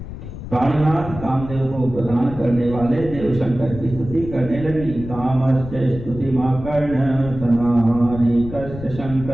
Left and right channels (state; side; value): noise; left; rumble, 11 dB below the sound